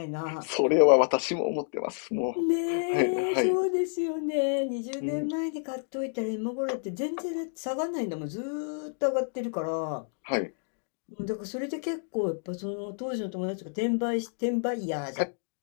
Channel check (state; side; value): silent; right; digital silence